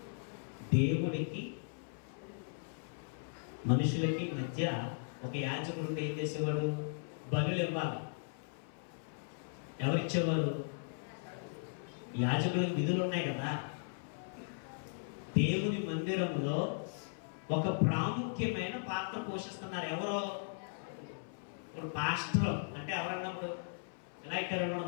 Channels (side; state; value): right; silent; 53 dB below the other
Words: దేవుడికి మనుషులకి మధ్య ఒక యాజకుడు ఏం చేసేవాడు? బలులు ఇవ్వాలి. ఎవరిచ్చేవారు? యాజకులకు విధులు ఉన్నాయి కదా. దేవుని మందిరంలో ఒక ప్రాముఖ్యమైన పాత్ర పోషిస్తున్నారు. ఎవరో? ఇప్పుడు పాస్టర్ అంటే ఎవరన్నప్పుడు ఎలా ఇచ్చారు?